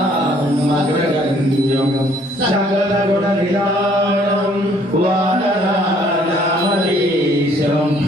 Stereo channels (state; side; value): normal; both; correlation 0.61